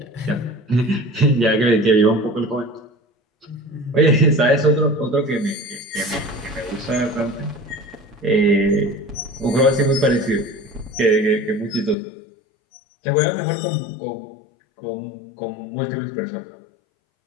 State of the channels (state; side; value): drops out; right; at 12.0 s